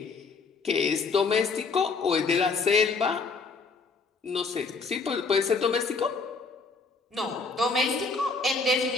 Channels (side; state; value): right; quieter; 4.4 dB